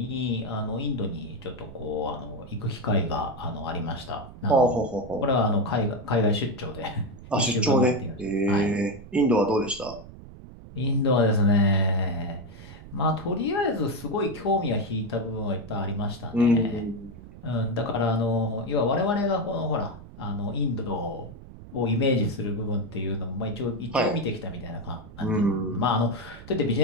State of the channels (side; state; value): right; noise; rumble, 16 dB below the sound